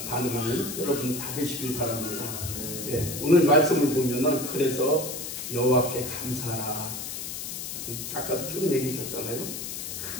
여러분 다 되시길 바랍니다. 오늘 말씀을 보면은 그래서 여호와께 감사하라. 아까도 쭉 얘기해 줬잖아요.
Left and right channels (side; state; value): left; noise; hiss, 6 dB below the sound